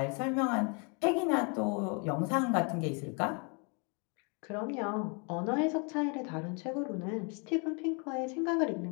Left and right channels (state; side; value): quieter; right; 35.0 dB